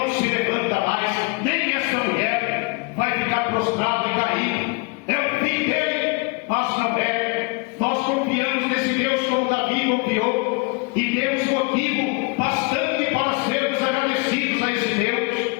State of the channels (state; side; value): quieter; right; 28.9 dB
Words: se levanta mais, nem essa mulher vai ficar prostrada e cair, é o fim dele. Mas não é. Nós confiamos nesse Deus como Davi confiou, e temos motivo bastante para sermos agradecidos a esse Deus,